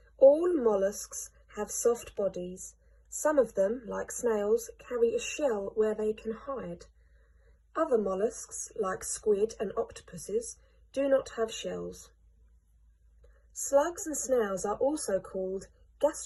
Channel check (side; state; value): both; identical; correlation 1.00